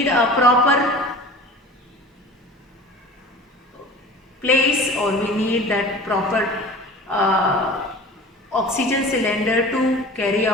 a proper place, or we need that proper oxygen cylinder to carry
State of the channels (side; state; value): both; normal; correlation 0.40